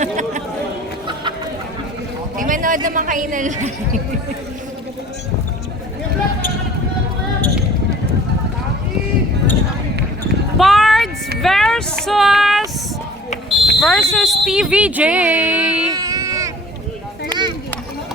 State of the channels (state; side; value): normal; both; correlation 0.48